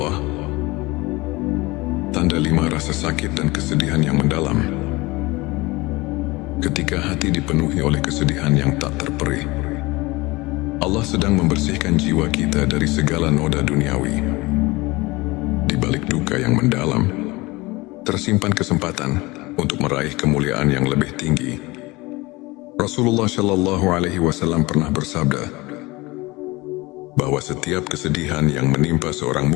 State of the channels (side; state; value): right; quieter; 22.4 dB